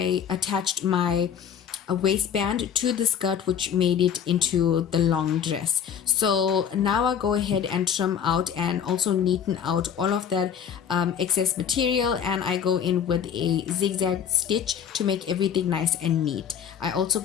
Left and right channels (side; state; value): right; quieter; 8.2 dB